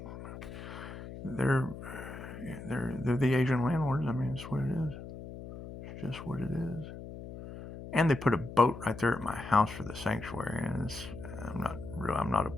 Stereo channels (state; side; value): noise; left; hum, 11 dB below the sound